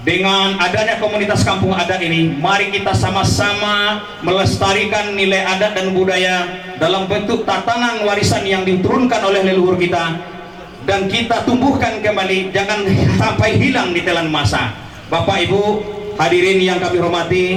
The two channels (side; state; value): both; identical; correlation 1.00